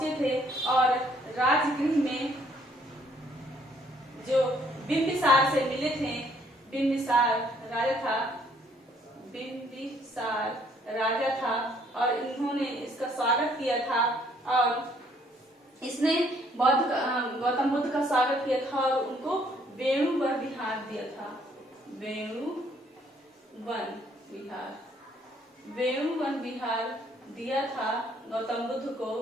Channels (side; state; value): both; normal; correlation 0.65